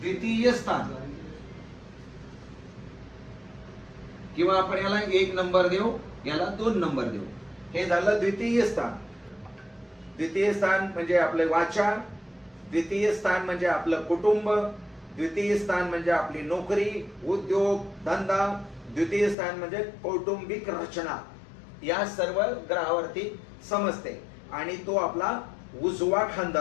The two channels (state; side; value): drops out; right; at 19.4 s